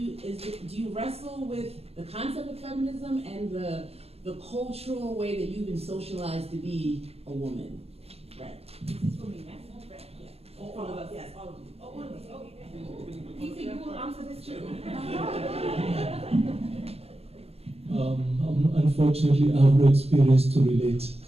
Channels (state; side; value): late; left; 0.29 ms